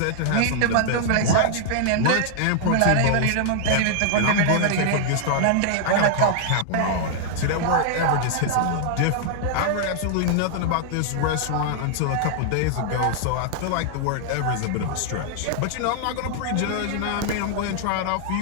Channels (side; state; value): both; different; correlation -0.01